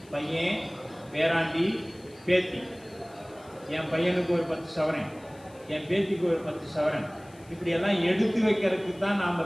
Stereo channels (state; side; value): noise; left; hiss, 27 dB below the sound